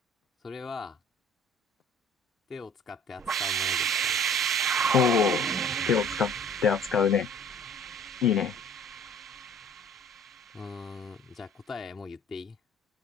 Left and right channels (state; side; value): normal; both; correlation 0.50